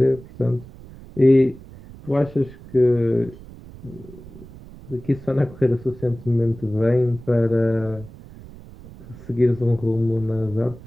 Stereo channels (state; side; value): noise; right; rumble, 18 dB below the sound